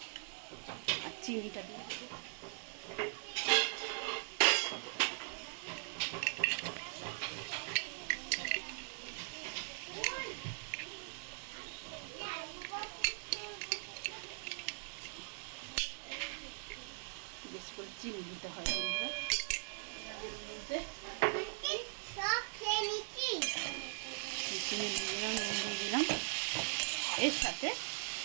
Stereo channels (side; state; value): left; silent; 51 dB below the other